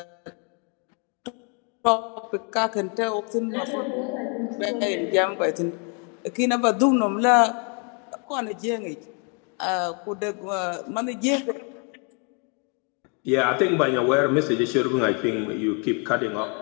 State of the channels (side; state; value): right; quieter; 36.9 dB